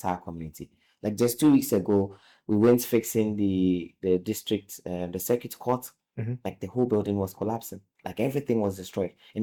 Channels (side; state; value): both; identical; correlation 1.00